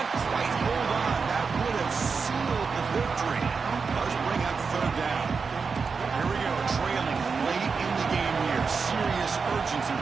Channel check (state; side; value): quieter; left; 5.1 dB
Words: quite hold on. That would have sealed the victory. Does bring up third down. Here we go, trailing late in the game here. Serious urgency